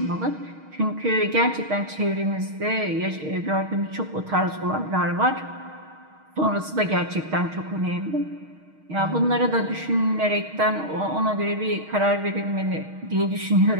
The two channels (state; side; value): late; left; 6.4 ms